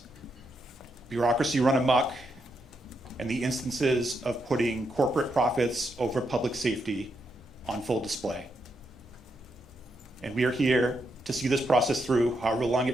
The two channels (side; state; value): both; normal; correlation 0.81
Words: bureaucracy run amok, and the instances of putting corporate profits over public safety on full display. And we are here to see this process through, however long